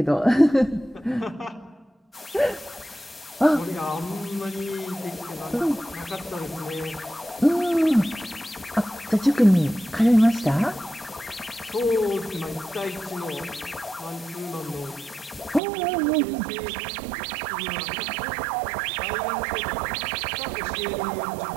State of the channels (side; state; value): left; drops out; at 15.6 s